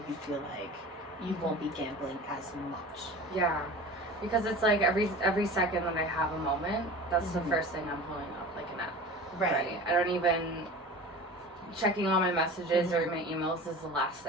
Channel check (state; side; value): normal; both; correlation 0.36